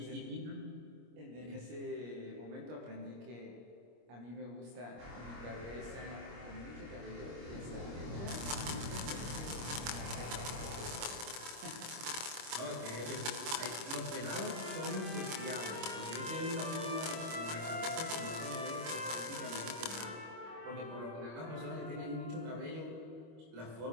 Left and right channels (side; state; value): left; late; 25 ms